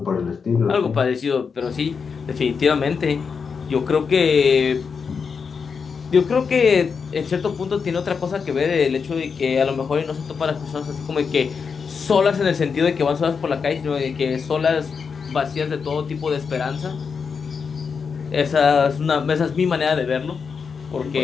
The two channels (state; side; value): quieter; right; 5.8 dB